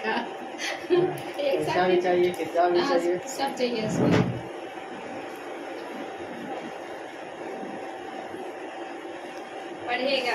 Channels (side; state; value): both; identical; correlation 1.00